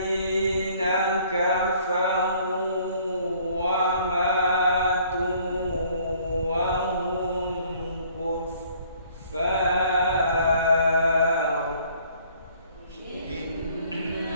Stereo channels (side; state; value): both; inverted; correlation -0.59